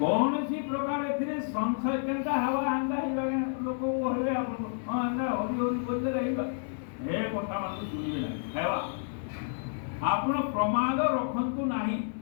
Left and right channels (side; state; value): right; silent; digital silence